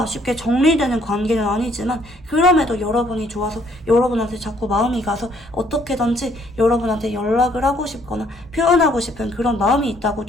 쉽게 정리되는 관계는 아니지만 그럼에도 여러분이 좋아서 여러분한테 자꾸 마음이 가서 어떻게든지 여러분한테 연락을 하고 싶거나 표현하고 싶은 그런 마음이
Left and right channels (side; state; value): both; normal; correlation 0.65